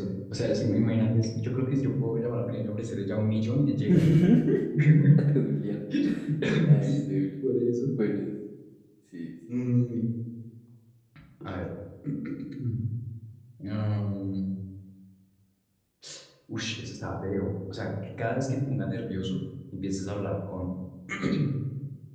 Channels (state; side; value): identical; both; correlation 1.00